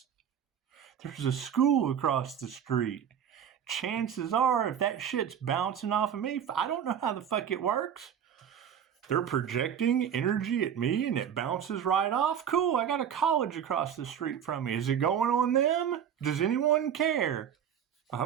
There's a school across the street. Chances are, if that shit's bouncing off of me, I don't know how the fuck it works. They're projecting energy at me and it bounces right off. Cool, I got a college across the street from me. Is it going on them? Does anyone care?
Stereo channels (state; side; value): quieter; left; 8.7 dB